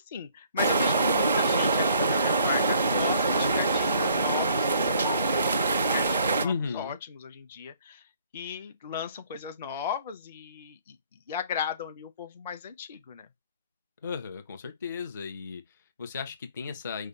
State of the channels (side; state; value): both; inverted; correlation -0.60